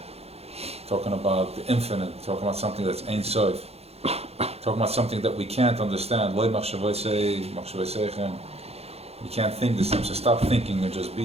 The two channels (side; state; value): left; late; 0.30 ms